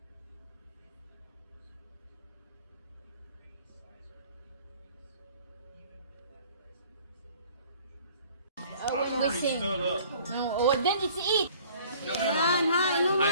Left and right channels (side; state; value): both; inverted; correlation -0.53